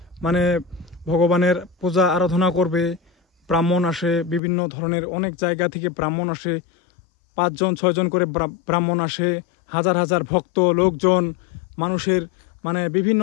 মানে ভগবানের পূজা আরাধনা করবে। ব্রাহ্মণ আসে, বিভিন্ন ধরনের অনেক জায়গা থেকে ব্রাহ্মণ আসে, 5-6 জন করে ব্রাহ্মণ আসে, হাজার হাজার ভক্ত লোকজন, মানুষের মানে বিভিন্ন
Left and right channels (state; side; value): drops out; right; at 4.4 s